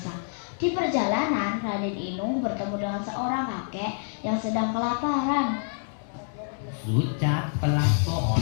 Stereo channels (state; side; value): silent; right; digital silence